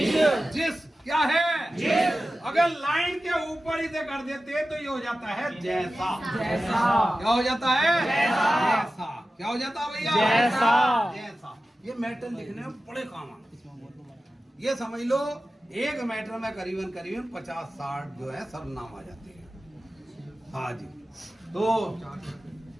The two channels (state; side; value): normal; both; correlation 0.94